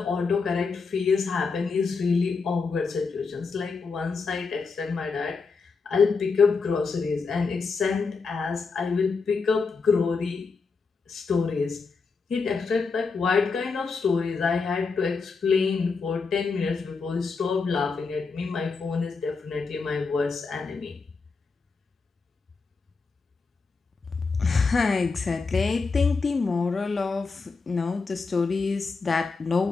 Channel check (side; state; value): right; quieter; 4.6 dB